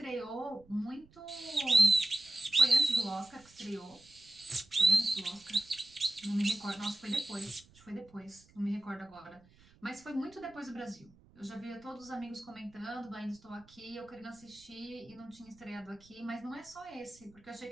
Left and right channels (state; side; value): noise; right; rumble, 27 dB below the sound